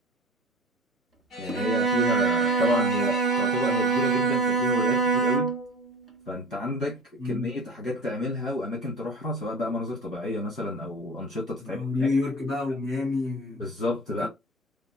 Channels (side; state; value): both; normal; correlation 0.35